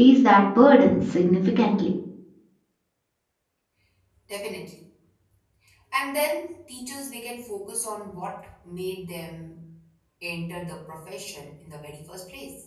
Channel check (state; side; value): identical; both; correlation 1.00